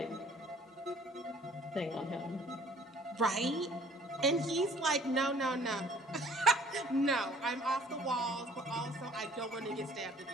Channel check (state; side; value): normal; both; correlation 0.56